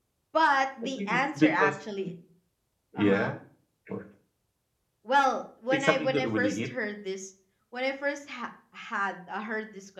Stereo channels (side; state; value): both; identical; correlation 1.00